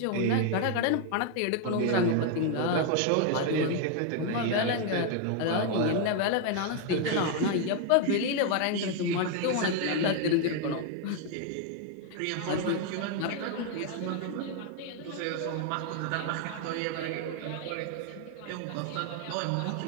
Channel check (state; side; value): different; both; correlation 0.00